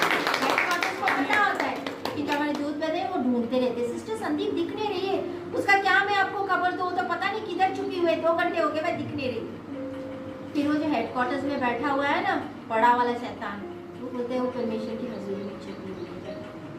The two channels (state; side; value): identical; both; correlation 1.00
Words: हेडक्वार्टर्स को पता होता है कि जो हमारे दूध बने वो ढूंढते रहते, सिस्टर संदीप दिख नहीं रही है, उसका क्या मैं आपको खबर दूं, तो पता नहीं किधर छुपी हुई है, 2 घंटे हो गए मैं दिख नहीं रही। फिर वो जो हेडक्वार्टर्स में बैठा हुआ है ना बड़ा वाला शैतान, वो बोलते हैं वो परमेश्वर की हजूरी में छुपी हुई है,